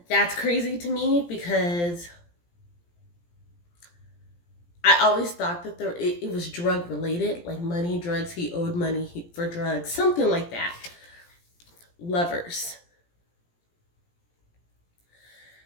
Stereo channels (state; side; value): late; right; 17 ms